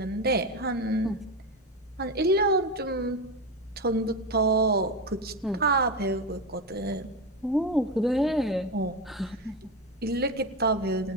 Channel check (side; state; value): both; normal; correlation 0.18